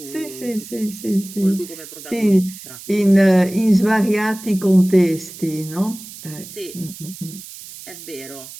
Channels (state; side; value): noise; right; hiss, 15 dB below the sound